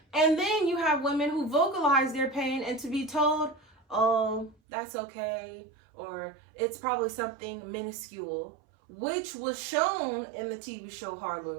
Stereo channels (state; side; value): drops out; left; at 4.5 s